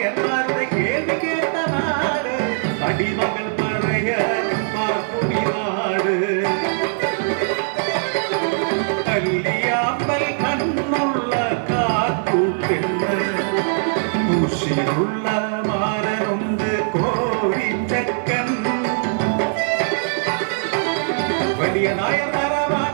കേൾവി കേട്ട നാട് അടിമകൾ പഴയ പാർക്കുമി നാട് കല്ലിയാമ്പൽ കണ്ണുള്ള കാത്തൂക്കെന്ന് കുശിയുള്ള മാരനുണ്ട് കോഴിച്ചക്കൻ വലിയ നായർ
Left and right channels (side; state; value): left; silent; digital silence